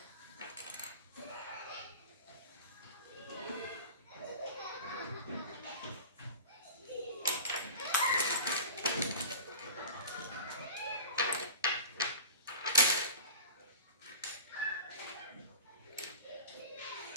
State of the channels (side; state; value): both; inverted; correlation -0.36